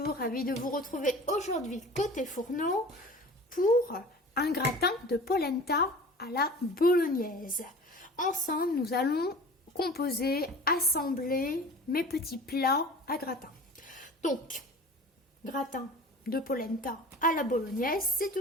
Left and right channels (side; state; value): both; normal; correlation 0.40